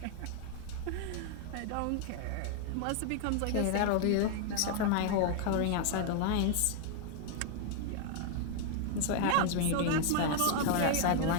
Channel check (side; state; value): both; different; correlation 0.00